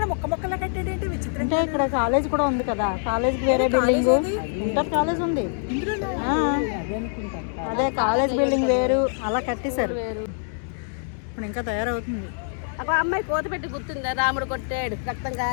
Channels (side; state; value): right; silent; digital silence